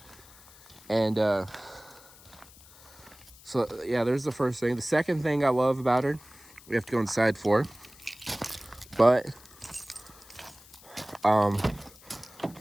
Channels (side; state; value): left; noise; hiss, 23 dB below the sound